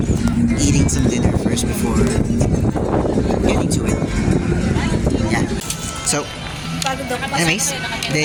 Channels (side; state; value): both; identical; correlation 1.00